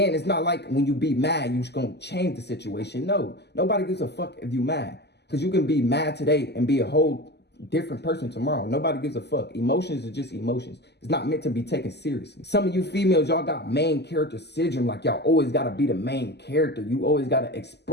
it's not like when you be mad, you're just going to change the situation. No, nobody gives a fuck if you mad, because you can be mad today and be a whole different person tomorrow. Nobody gives a fuck. Emotions are just emotions. It's not meant to be taken seriously. Some of you females, y'all got main character syndrome. Like y'all always got to be the main character. You always got to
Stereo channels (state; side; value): late; right; 0.49 ms